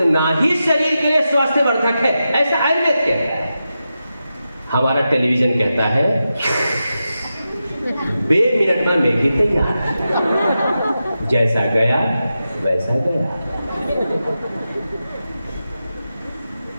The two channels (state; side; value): inverted; both; correlation -0.90